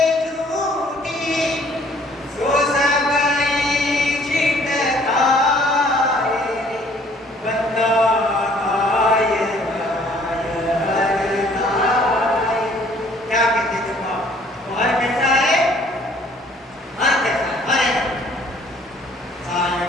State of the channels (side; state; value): both; normal; correlation 0.58